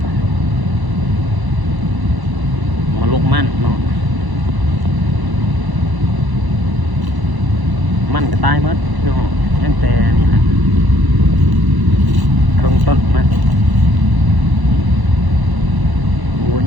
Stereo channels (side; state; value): left; late; 1.0 ms